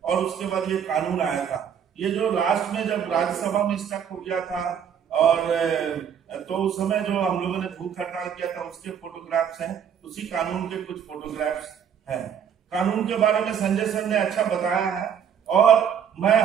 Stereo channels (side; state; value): left; quieter; 8.2 dB